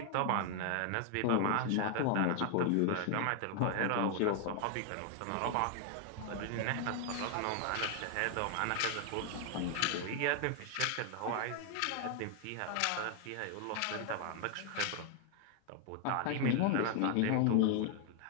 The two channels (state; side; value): different; both; correlation 0.00